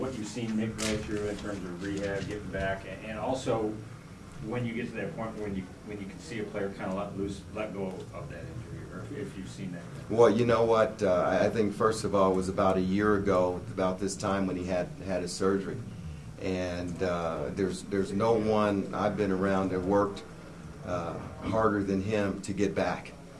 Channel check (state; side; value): identical; both; correlation 1.00